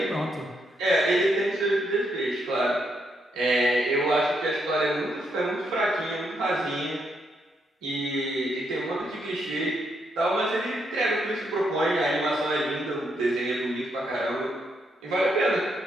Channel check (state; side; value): normal; both; correlation 0.78